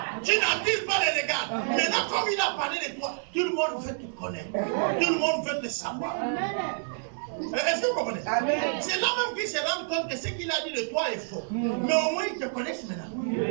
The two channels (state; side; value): silent; left; digital silence